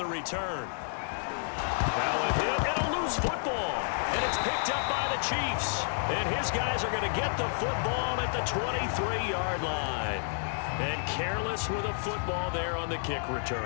return. Now a hit and a loose football, and it's picked up by the Chiefs, and his guys are going to get the football at the 23-yard line. And careless with a football there on the kick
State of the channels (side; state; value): right; silent; digital silence